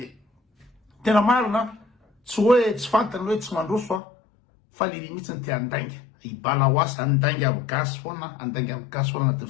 tena marina tsy hoe tsy fantany hoe tsy mandroso fa le mihitsy ny te andainga ibala hoasy andainga aby gasy foana andainga aby gasy foana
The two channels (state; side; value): drops out; right; at 4.0 s